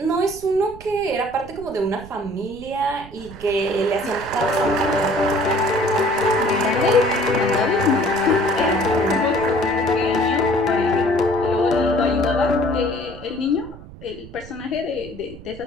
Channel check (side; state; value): right; noise; rumble, 18 dB below the sound